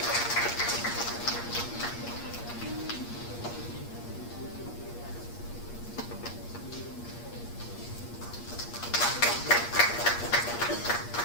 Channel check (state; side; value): late; right; 8.5 ms